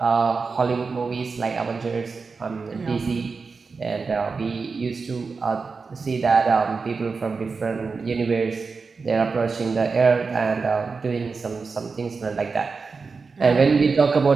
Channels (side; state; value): left; quieter; 4.7 dB